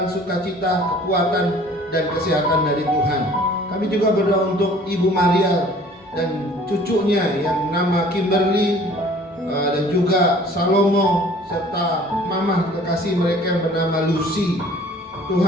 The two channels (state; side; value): normal; both; correlation 0.51